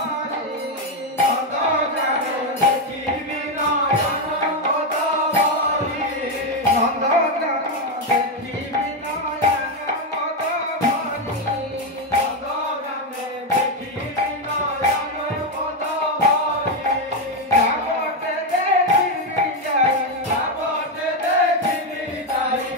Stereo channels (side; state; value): both; normal; correlation 0.06